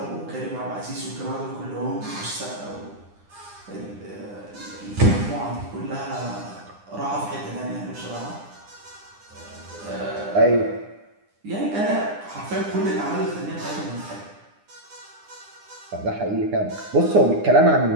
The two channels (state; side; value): late; left; 9.9 ms